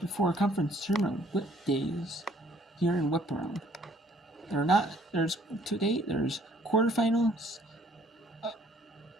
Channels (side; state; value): both; normal; correlation 0.61